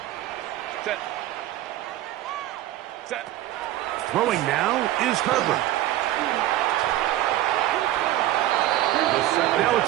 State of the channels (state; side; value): quieter; left; 14.4 dB